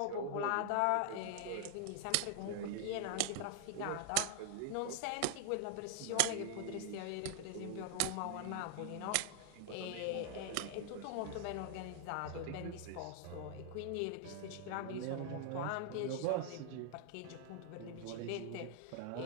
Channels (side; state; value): both; different; correlation 0.00